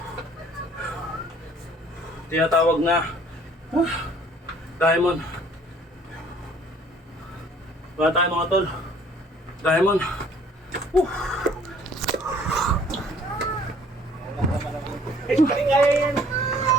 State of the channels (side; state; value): both; normal; correlation 0.56